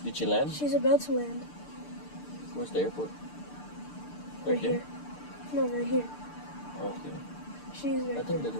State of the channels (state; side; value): late; right; 6.7 ms